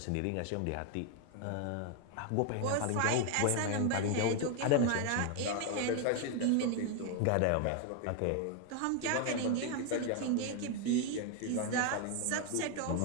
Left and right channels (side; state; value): both; different; correlation 0.00